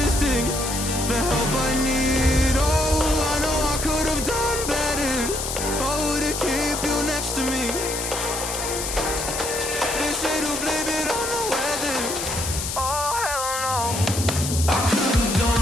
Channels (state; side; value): noise; left; hiss, 4 dB below the sound